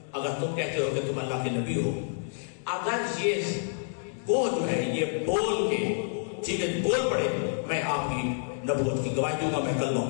اگر تم کہتے ہو کہ تم اللہ کے نبی ہو، اگر یہ گو جو ہے یہ بول کے ٹھیک ہے بول پڑے، میں آپ کی نبوت کی گواہی دوں گا، میں کلمہ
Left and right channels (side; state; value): right; silent; digital silence